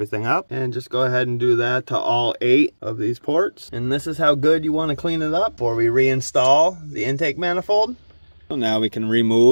up. And just go ahead and do that to all 8 of these ports. And this is how good you want to clean it up before we reinstall the intake manifold. So now we can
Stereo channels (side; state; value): both; inverted; correlation -1.00